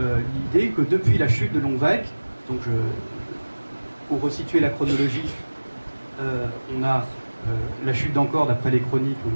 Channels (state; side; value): inverted; both; correlation -1.00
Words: l'idée que depuis la chute de Longvec, donc pour resituer la chronologie, on a la chute d'Angkor d'après les chroniques au